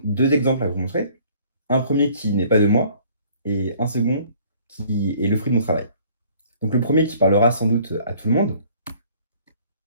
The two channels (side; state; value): both; inverted; correlation -0.56